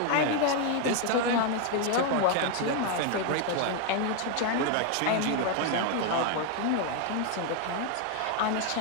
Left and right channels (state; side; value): different; both; correlation 0.01